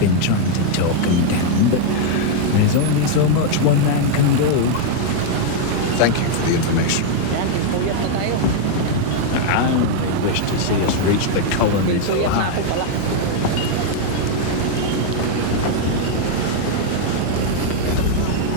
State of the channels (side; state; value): both; different; correlation 0.00